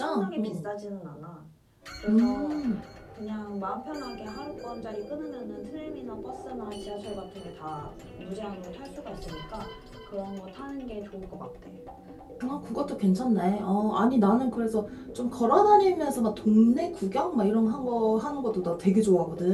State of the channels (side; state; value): both; identical; correlation 1.00